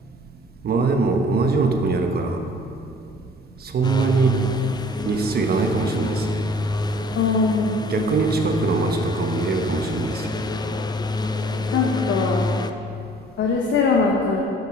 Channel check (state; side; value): normal; both; correlation 0.53